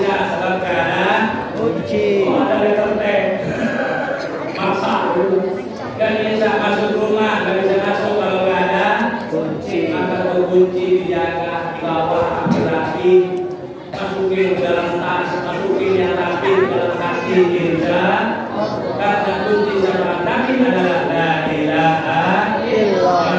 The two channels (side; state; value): both; identical; correlation 1.00